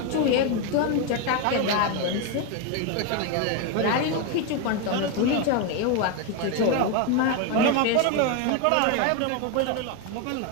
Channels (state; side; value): different; both; correlation 0.02